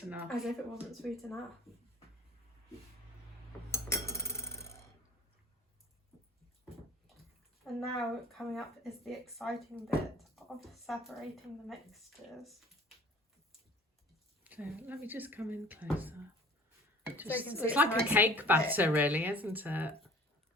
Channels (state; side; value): normal; both; correlation 0.47